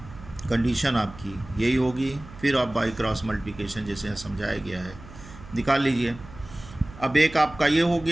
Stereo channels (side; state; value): right; noise; hum, 17 dB below the sound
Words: कंडीशन आपकी यही होगी। फिर आप बाई क्रॉस मल्टीप्लिकेशन जैसे समझाया गया है निकाल लीजिए। अब एक आपका ये हो